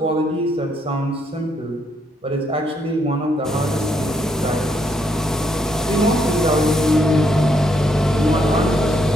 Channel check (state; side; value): normal; both; correlation 0.74